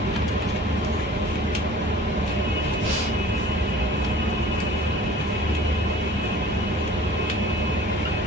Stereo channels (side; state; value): both; normal; correlation 0.46